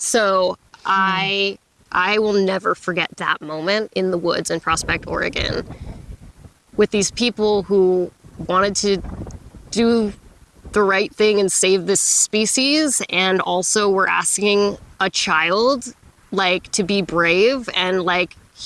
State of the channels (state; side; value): identical; both; correlation 1.00